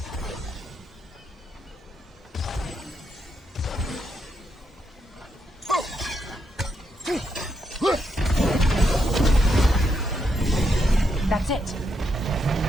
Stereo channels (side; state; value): both; normal; correlation 0.80